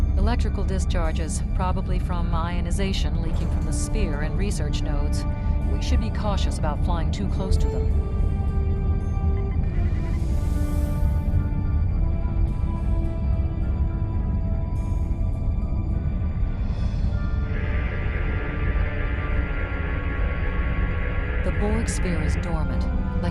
Electrical discharges, probably from ionization leaking from the sphere and research nodes. We should be cautious about flying too close to them. The Borg sphere is dormant,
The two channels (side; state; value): both; identical; correlation 1.00